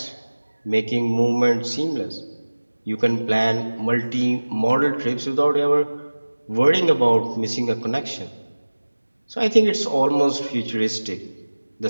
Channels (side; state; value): both; inverted; correlation -1.00